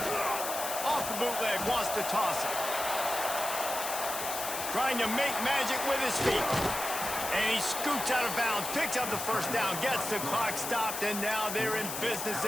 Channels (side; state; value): left; noise; hiss, 5 dB below the sound